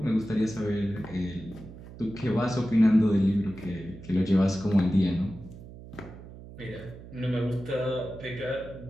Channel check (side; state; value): right; noise; hum, 16 dB below the sound